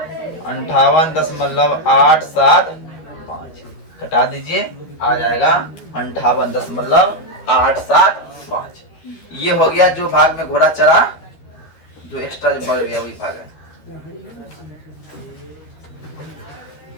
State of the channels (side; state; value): right; late; 12 ms